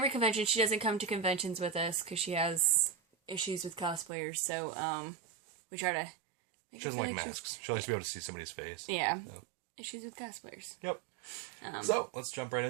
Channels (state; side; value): drops out; left; at 4.1 s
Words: convention. She doesn't come to conventions with us because she has issues with cosplayers. So we try to. She doesn't like masks. She likes to be able to see somebody's face. Yeah. So. Issues with cosplayers. Yep. So let's jump right